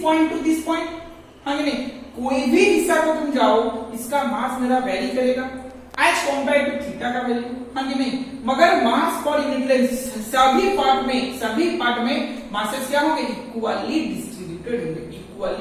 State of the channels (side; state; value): both; identical; correlation 1.00